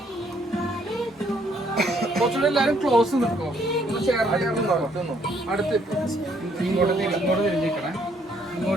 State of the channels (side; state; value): both; normal; correlation 0.68